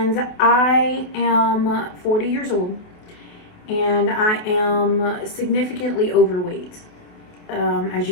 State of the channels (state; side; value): late; right; 28 ms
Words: I am 40 years old, and I am significantly overweight, as